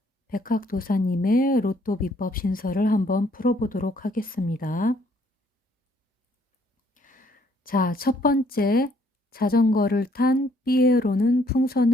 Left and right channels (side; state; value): both; normal; correlation 0.65